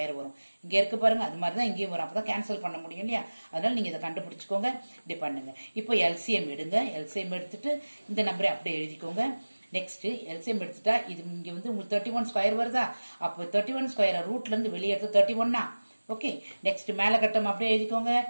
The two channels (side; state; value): both; inverted; correlation -1.00